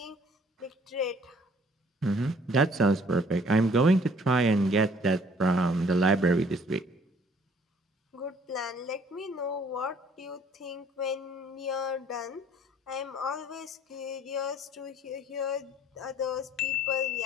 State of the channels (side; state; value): both; normal; correlation 0.58